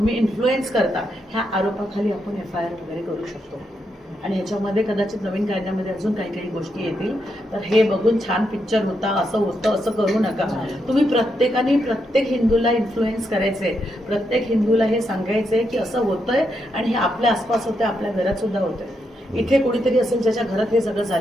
इन्फ्लुएन्स करता, ह्या आरोपाखाली आपण FIR वगैरे करू शकतो। आणि ह्याच्यामध्ये कदाचित नवीन कायद्यामध्ये अजून काही काही गोष्टी येतील। तर हे बघून छान पिक्चर होता, असं होतं, असं करू नका। तुम्ही प्रत्येकाने प्रत्येक हिंदूला इन्फ्लुएन्स करायचे, प्रत्येक हिंदूला हे सांगायचे की असं होतंय आणि हे आपल्या आसपास होतंय, आपल्या घरात सुद्धा होतंय। इथे कोणीतरी असेल ज्याच्या घरात हे सगळं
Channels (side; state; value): both; normal; correlation 0.82